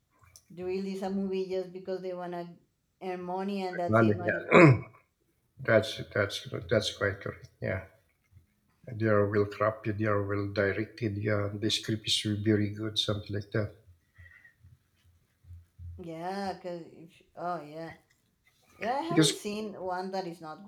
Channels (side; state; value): both; identical; correlation 1.00